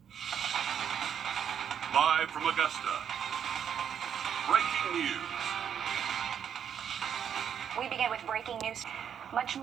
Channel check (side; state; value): left; quieter; 8.5 dB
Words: Live from Augusta, breaking news. We begin with breaking news. Much